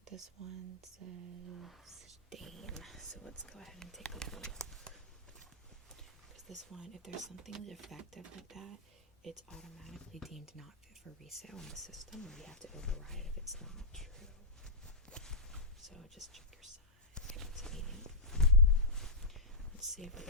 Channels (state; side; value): quieter; right; 3.2 dB